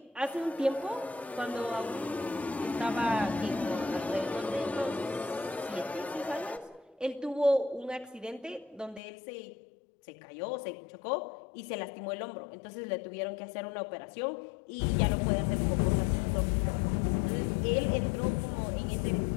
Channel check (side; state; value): right; drops out; at 9.0 s